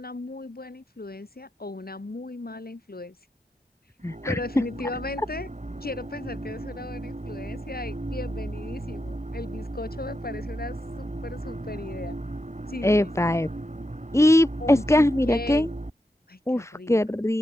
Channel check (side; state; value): both; normal; correlation 0.84